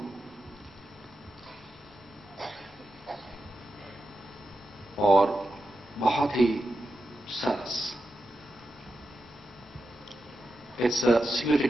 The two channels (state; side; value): normal; both; correlation 0.89